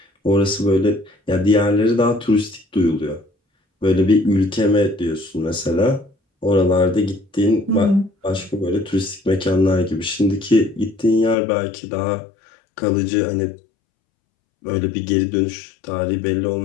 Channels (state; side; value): drops out; right; at 11.4 s